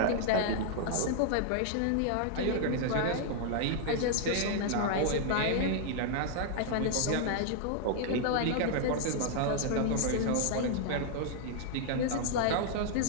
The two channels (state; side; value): different; both; correlation 0.00